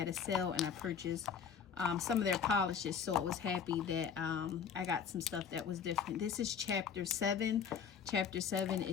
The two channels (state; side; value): quieter; right; 7.0 dB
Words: a sale, and I purchased some of their polishes, so I was happy that I got some stuff that was different. This is chapter 7. Chapter 7